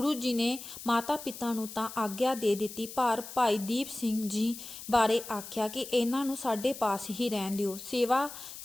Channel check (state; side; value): noise; left; hiss, 12 dB below the sound